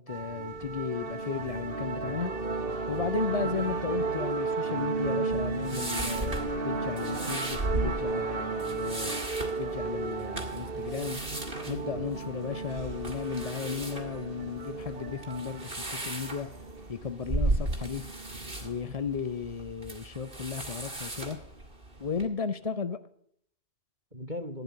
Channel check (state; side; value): late; left; 2.5 ms